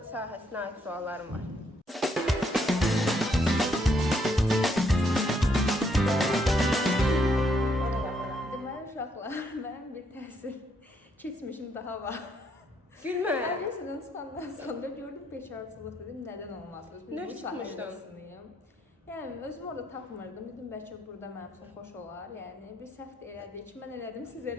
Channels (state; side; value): normal; both; correlation 0.73